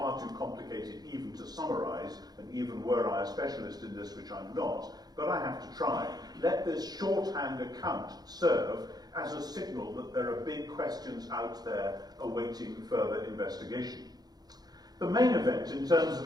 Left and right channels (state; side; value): late; left; 0.19 ms